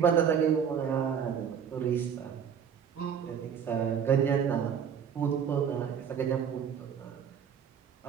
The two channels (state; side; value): quieter; left; 7.8 dB